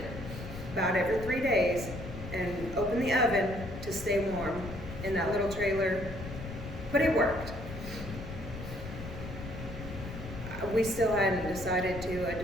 about every 3 days and open the oven to stay warm in that little trailer. But it worked. We still hadn't decided to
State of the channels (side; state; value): left; noise; rumble, 10 dB below the sound